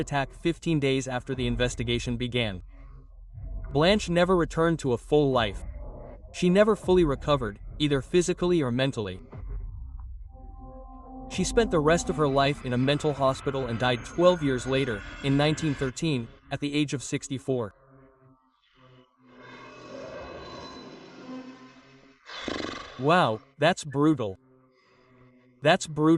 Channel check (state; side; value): identical; both; correlation 1.00